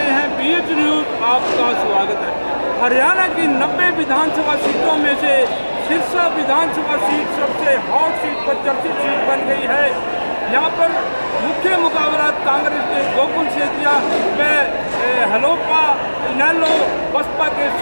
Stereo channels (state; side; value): inverted; both; correlation -1.00